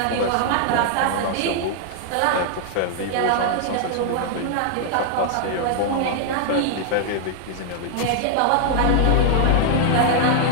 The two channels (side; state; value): both; different; correlation 0.00